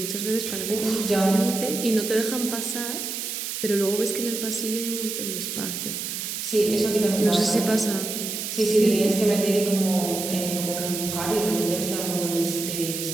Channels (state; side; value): noise; right; hiss, 4 dB below the sound